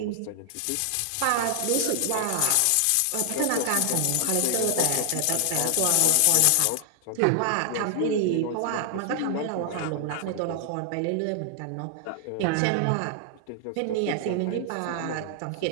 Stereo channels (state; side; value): different; both; correlation 0.00